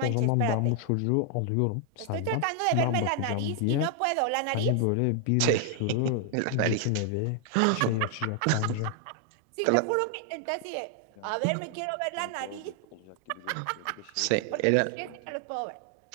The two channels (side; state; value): both; different; correlation 0.00